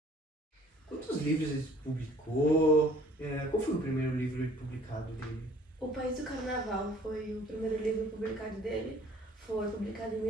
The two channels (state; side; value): normal; both; correlation 0.55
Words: Quantos livros ele publicou? Qual foi o primeiro livro publicado dele? O País do Carnaval foi o primeiro livro publicado dele, foi publicado em